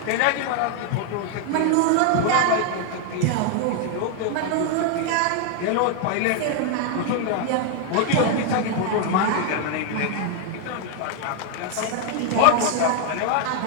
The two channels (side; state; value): both; different; correlation 0.00